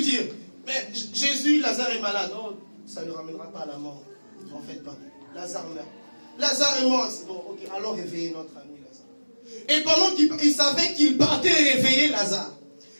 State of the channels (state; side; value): inverted; both; correlation -1.00